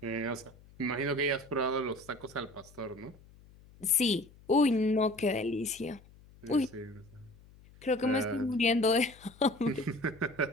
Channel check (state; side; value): noise; left; hum, 24 dB below the sound